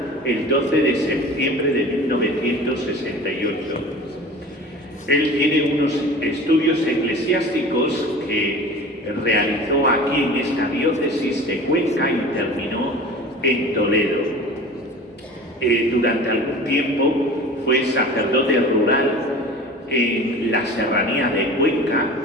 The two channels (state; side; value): normal; both; correlation 0.39